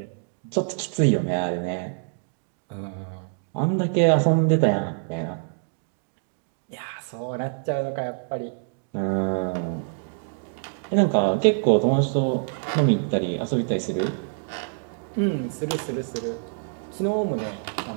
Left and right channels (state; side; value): silent; left; digital silence